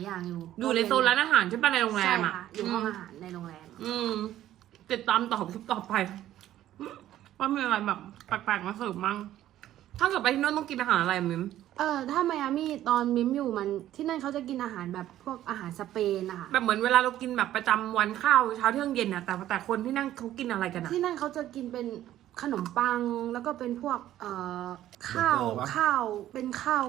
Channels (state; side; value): quieter; left; 12.9 dB